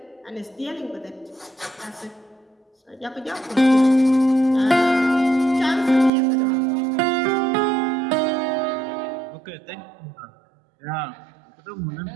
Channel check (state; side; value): drops out; left; at 6.1 s